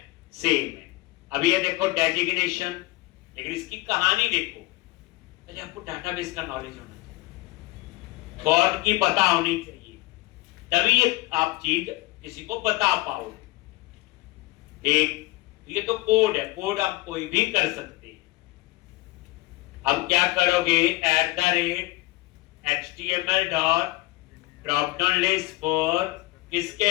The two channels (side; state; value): right; quieter; 20.8 dB